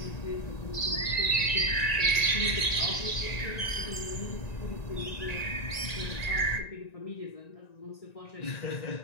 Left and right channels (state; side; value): late; right; 1.9 ms